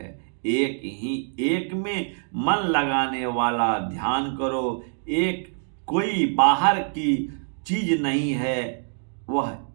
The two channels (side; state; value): left; silent; digital silence